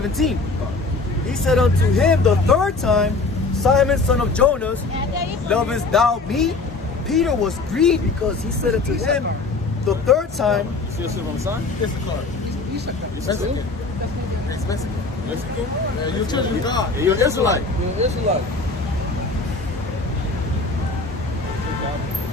He said unto him the third time, Simon, son of Jonas, lovest thou me? Peter was grieved because he said unto him the third time, Still sitting on the sign? Issachar. Mexican. It's Mexican. Mexican? Yeah, you're children of God. You're an Israelite. You're an Israelite.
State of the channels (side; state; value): right; quieter; 3.8 dB